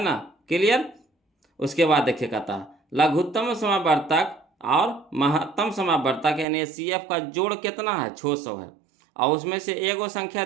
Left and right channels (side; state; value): left; drops out; at 6.5 s